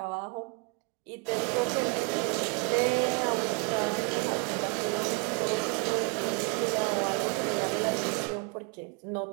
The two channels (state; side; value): quieter; left; 31.9 dB